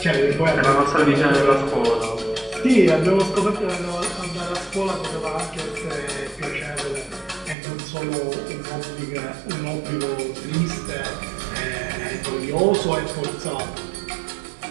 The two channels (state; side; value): drops out; left; at 7.6 s